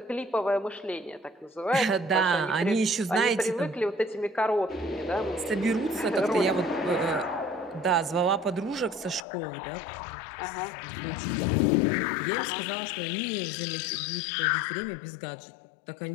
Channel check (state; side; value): drops out; right; at 9.2 s